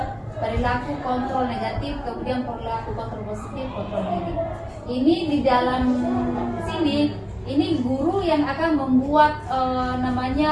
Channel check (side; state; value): both; identical; correlation 1.00